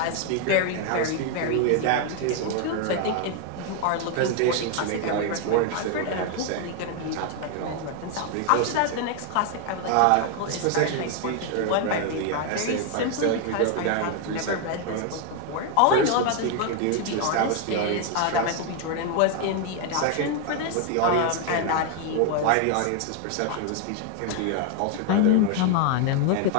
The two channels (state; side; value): different; both; correlation 0.01